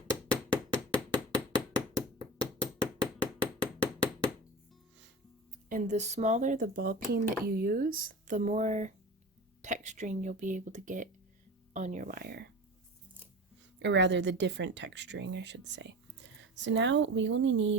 And the smaller the ball peen that you use, the more texturing you'll be able to get on your wire. Or rather, the different texturing, I should say. So now we only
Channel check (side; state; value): both; normal; correlation 0.32